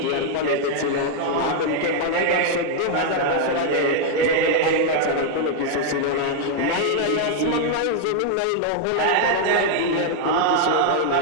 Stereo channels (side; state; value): both; different; correlation 0.00